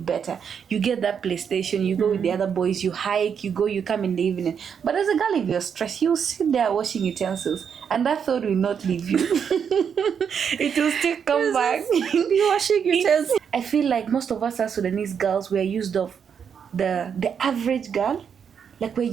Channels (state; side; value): quieter; left; 7.3 dB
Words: better. You get that PlayStation, you go with the other boys, you hike, you come in the evening. But as a girl, if you're stressed, you sit there washing utensils, and that thought will not leave you. It will still come back. Be washing utensils. I feel like most of us as Sudanese girls, we're used of the average girl. Like, we're